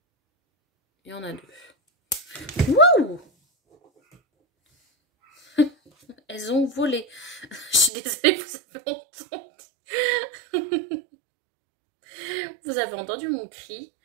Il y en a 2. Wouh! Elles ont volé. Je suis désolée, vous avez entendu. Vous avez entendu mon cri.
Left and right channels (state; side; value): drops out; left; at 7.9 s